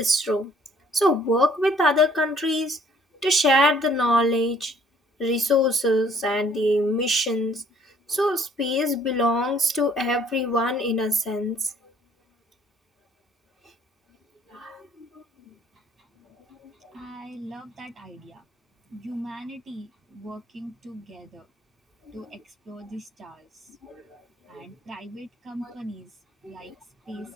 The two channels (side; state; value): both; normal; correlation 0.60